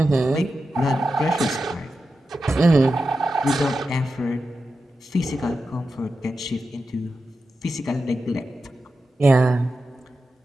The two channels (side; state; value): both; normal; correlation 0.90